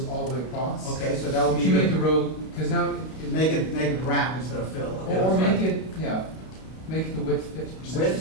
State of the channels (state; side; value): late; right; 32 ms